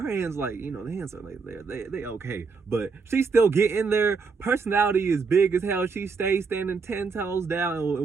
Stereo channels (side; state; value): left; quieter; 4.8 dB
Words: hands, like, you know, the hands are like, they okay. But she still get in there. Personality is big as hell. She stays standing 10 toes down.